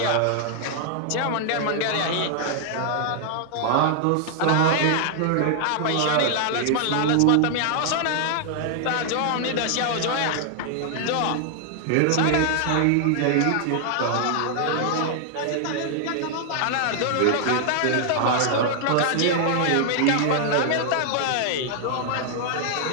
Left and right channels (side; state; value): both; different; correlation 0.00